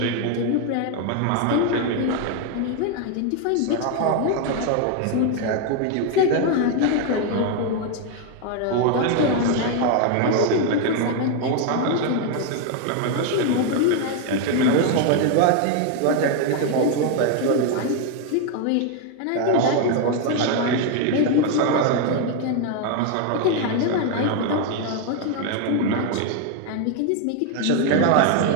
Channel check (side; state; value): both; different; correlation 0.01